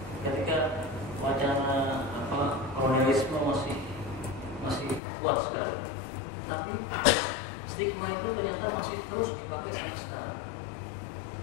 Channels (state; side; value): drops out; right; at 5.0 s